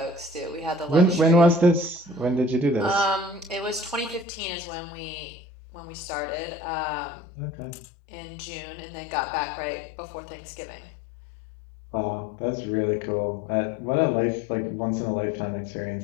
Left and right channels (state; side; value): drops out; right; at 4.2 s